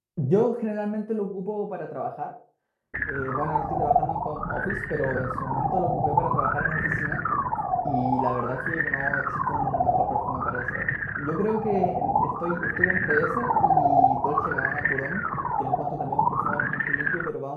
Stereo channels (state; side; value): identical; both; correlation 1.00